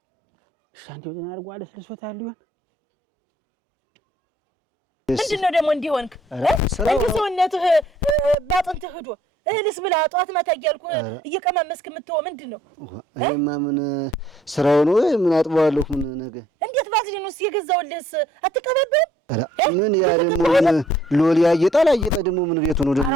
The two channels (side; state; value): both; normal; correlation 0.63